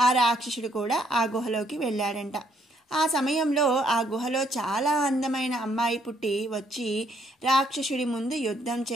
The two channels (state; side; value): normal; both; correlation 0.70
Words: ఆ రాక్షసుడు కూడా ఆ గుహలోకి వెళ్ళాడంట. ఆ సమయంలో ఆ గుహలో చాలా అందమైన అమ్మాయి పుట్టి వచ్చి రాక్షసుడి ముందు యుద్ధం